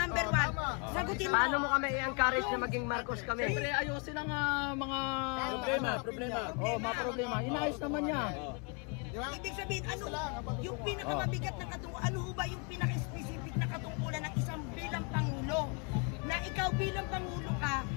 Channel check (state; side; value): quieter; right; 35.0 dB